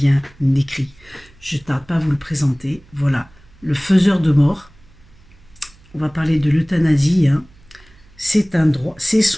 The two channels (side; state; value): right; noise; hum, 27 dB below the sound